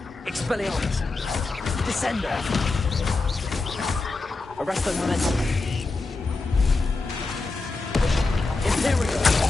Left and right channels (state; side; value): quieter; right; 3.5 dB